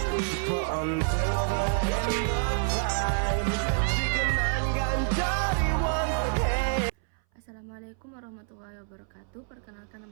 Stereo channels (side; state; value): left; silent; 59 dB below the other